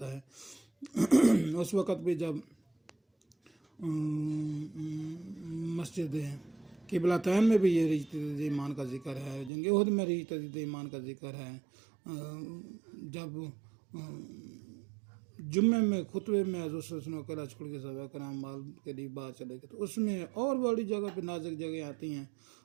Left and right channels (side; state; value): left; drops out; at 9.5 s